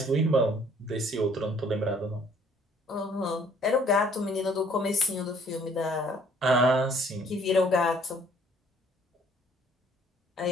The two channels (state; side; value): normal; both; correlation 0.59